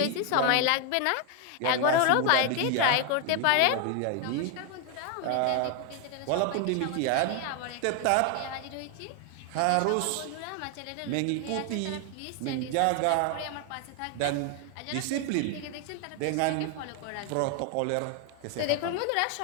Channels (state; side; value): different; both; correlation 0.01